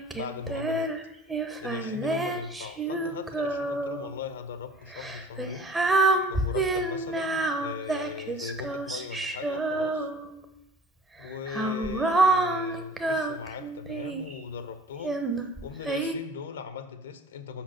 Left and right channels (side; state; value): both; normal; correlation 0.47